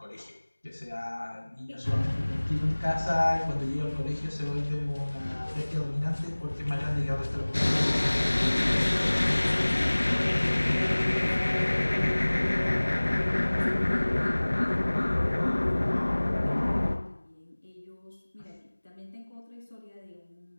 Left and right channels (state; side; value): inverted; both; correlation -1.00